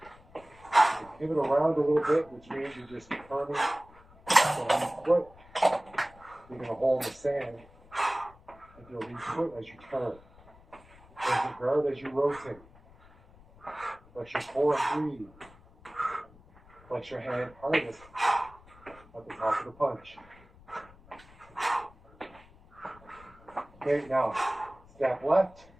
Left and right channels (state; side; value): noise; left; rumble, 25 dB below the sound